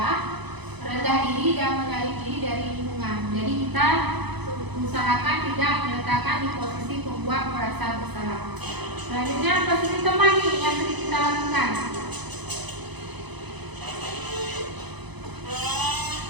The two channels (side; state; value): left; late; 0.99 ms